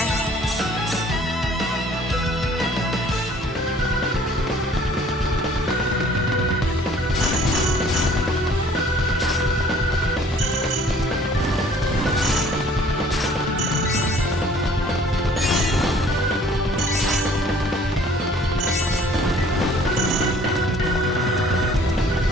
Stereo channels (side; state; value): both; normal; correlation 0.55